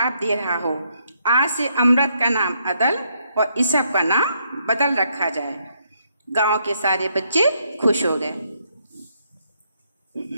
दे रहा हो। आज से अमृत का नाम अदल और ईसब का नाम बदल रखा जाए। गांव के सारे बच्चे खुश हो गए।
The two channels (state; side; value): inverted; both; correlation -0.74